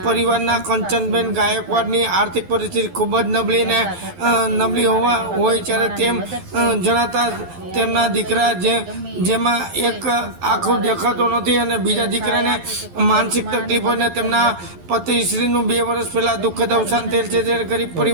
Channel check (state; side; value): late; left; 11 ms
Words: પરિવારના કંચનબેન ગાયકવાડની આર્થિક પરિસ્થિતિ ખૂબ જ નબળી હોય ત્યારે તેમ જણાતા તેમના દીકરા જેમાં એક આંખો દેખાતો નથી અને બીજા દીકરાને માનસિક તકલીફ અને તેમના પતિશ્રીનું 2 વર્ષ પહેલાં દુઃખદ અવસાન થયેલ છે। ત્યારે ગરીબ